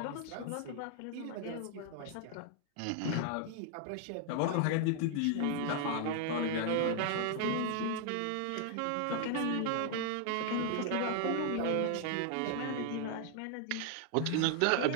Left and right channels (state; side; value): different; both; correlation 0.00